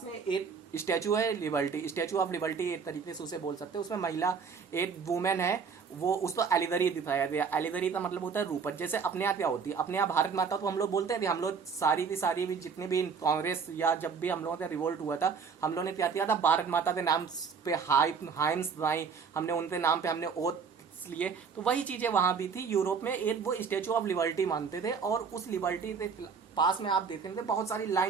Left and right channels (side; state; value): left; quieter; 5.8 dB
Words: में एक स्टैचू है, लिबर्टी, स्टैचू ऑफ लिबर्टी एक तरीके से उसे बोल सकते हैं। उसमें महिला, एक वुमेन है, वो उसको एलिगरी दिखाया गया। एलिगरी का मतलब होता है रूपक। जैसे अपने यहाँ क्या होती है, अपने यहाँ भारत माता तो हम लोग बोलते हैं, हम लोग सारी की सारी भी जितनी भी कांग्रेस या जब भी हम लोगों का रिवोल्ट हुआ था, हम लोगों ने क्या किया था, भारत माता के नाम पे हाइम्स बनाई, हमने उनके नाम पे हमने ओथ लिए। तो वही चीजें वहां भी थी यूरोप में। एक वो स्टेचू ऑफ लिबर्टी मानते थे, और उस लिबर्टी के पास में आप देख रहे थे बहुत सारी